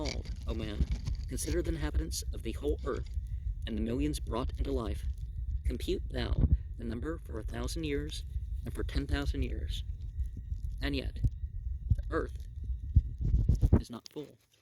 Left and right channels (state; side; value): identical; both; correlation 1.00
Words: O man. Consider the inhabitants of the whole earth, and the millions brought into life. Compute thou the number for 1,000 years, and for 10,000 years. And yet, the earth is not full.